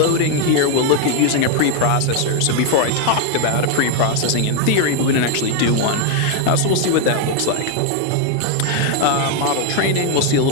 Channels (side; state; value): both; different; correlation 0.00